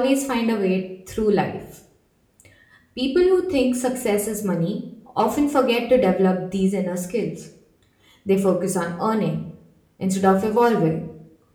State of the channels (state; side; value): identical; both; correlation 1.00